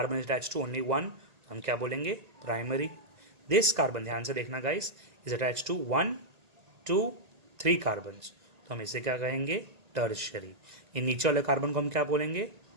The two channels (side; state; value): left; late; 1.8 ms